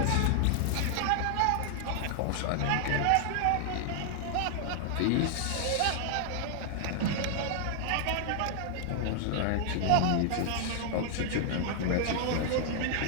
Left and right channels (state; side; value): different; both; correlation 0.00